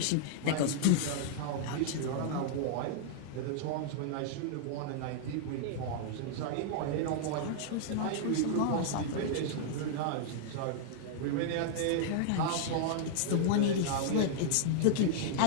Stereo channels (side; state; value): both; different; correlation -0.01